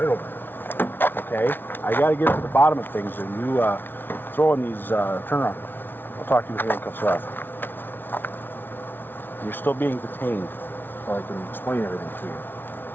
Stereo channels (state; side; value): late; right; 0.098 ms